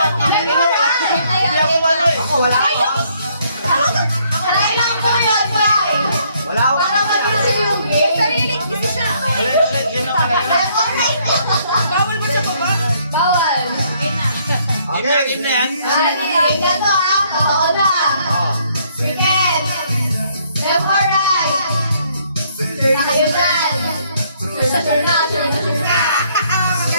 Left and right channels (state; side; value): inverted; both; correlation -0.67